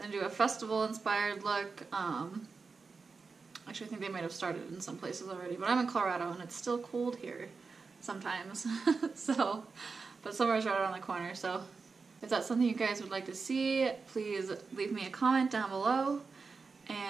going to do a festival inspired look. Actually, I think they might have started in some places already, but I'm in Colorado and it's still cold here sometimes. So, but summer is right around the corner, so if that's something you guys would like to see, please leave me a comment down below.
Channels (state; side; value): quieter; left; 4.6 dB